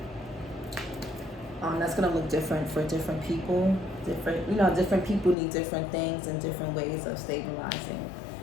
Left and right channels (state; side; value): drops out; right; at 5.4 s